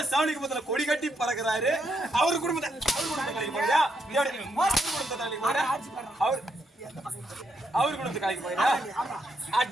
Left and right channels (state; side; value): normal; both; correlation 0.78